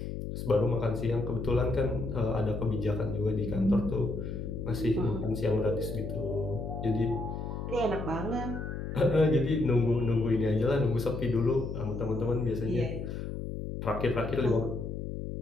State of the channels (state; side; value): noise; left; hum, 6 dB below the sound